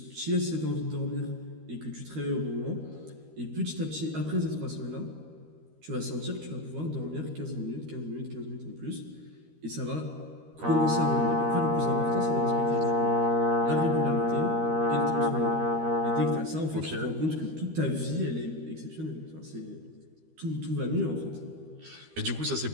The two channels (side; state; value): left; late; 13 ms